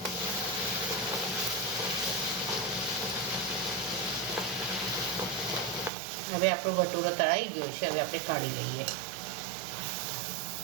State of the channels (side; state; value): left; drops out; at 5.9 s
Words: હવે આપણો ભટુરો તળાઈ ગયો છે, હવે આપણે કાઢી લઈએ।